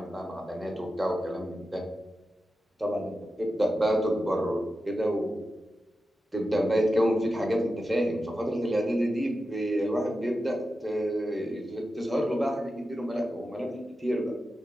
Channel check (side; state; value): both; normal; correlation 0.91